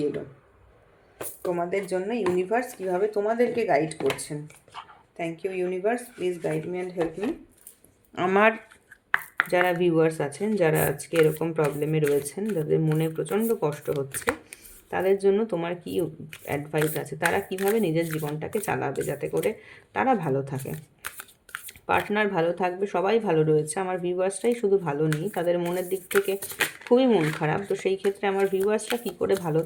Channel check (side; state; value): both; identical; correlation 1.00